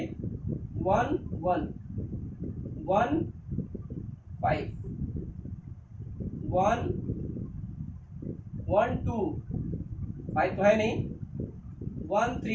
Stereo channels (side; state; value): both; identical; correlation 1.00